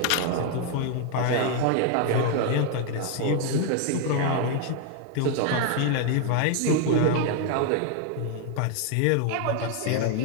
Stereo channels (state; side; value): different; both; correlation 0.00